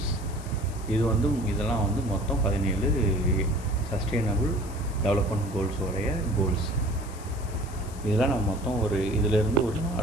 இதெல்லாம் வந்து மொத்தம் 17 சஸ்டைனபிள் டெவலப்மெண்ட் கோல்ஸோடைய கோல்ஸ். இதெல்லாம் நம்ம மொத்தம் இதிலேருந்து ஒரு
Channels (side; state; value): left; noise; hiss, 19 dB below the sound